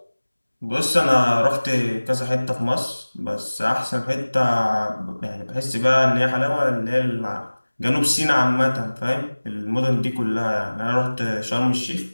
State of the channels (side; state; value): both; inverted; correlation -1.00